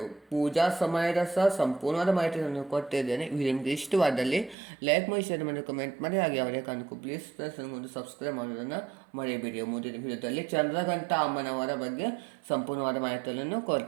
ಪೂಜಾ ಸಮಯದ ಸಹ ಸಂಪೂರ್ಣವಾದ ಮಾಹಿತಿಯನ್ನು ಕೊಟ್ಟಿದ್ದೇನೆ. ವಿಡಿಯೋ ನಿಮಗೆ ಇಷ್ಟವಾದಲ್ಲಿ ಲೈಕ್ ಮಾಡಿ, ಶೇರ್ ಮಾಡಿ, ಕಮೆಂಟ್ ಮಾಡಿ. ಹಾಗೆ ಅವರೇ ಕಾಣಕು ಪ್ಲೀಸ್ ಫ್ರೆಂಡ್ಸ್ ನನಗೊಂದು ಸಬ್ಸ್ಕ್ರೈಬ್ ಮಾಡೋದನ್ನು ಮರೆಯಬೇಡಿ. ಮುಂದಿನ ವಿಡಿಯೋದಲ್ಲಿ ಚಂದ್ರಘಂಟ ಅಮ್ಮನವರ ಬಗ್ಗೆ ಸಂಪೂರ್ಣವಾದ ಮಾಹಿತಿಯನ್ನು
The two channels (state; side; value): drops out; left; at 4.5 s